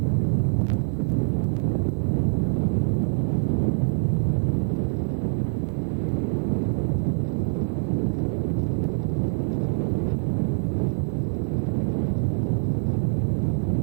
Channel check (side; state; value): left; silent; digital silence